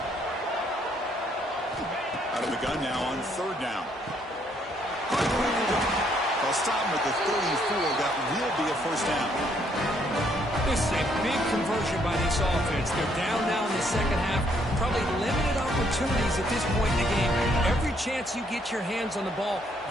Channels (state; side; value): normal; both; correlation 0.69